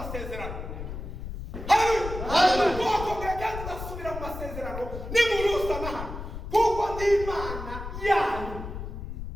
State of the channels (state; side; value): noise; left; rumble, 8 dB below the sound